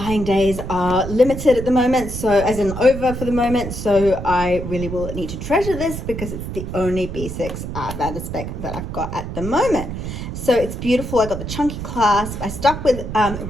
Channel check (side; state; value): right; noise; rumble, 7 dB below the sound